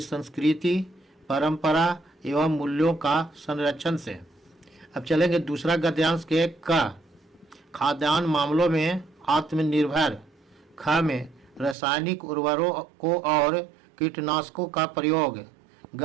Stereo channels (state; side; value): drops out; left; at 11.8 s